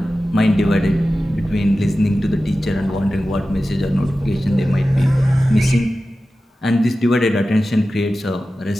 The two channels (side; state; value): both; normal; correlation 0.94